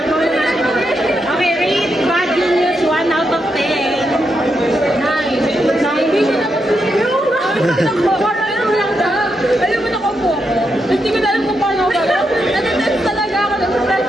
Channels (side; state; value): both; normal; correlation 0.83